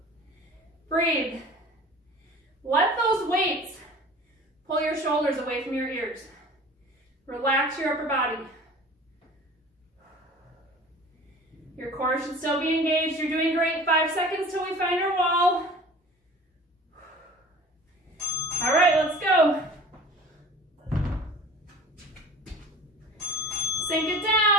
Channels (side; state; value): both; normal; correlation 0.42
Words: Breathe. Let those weights pull your shoulders away from your ears. Relax your upper body. Your core should still be engaged. You're doing great. 5 seconds till we find our wall. All right, let's go. Sink it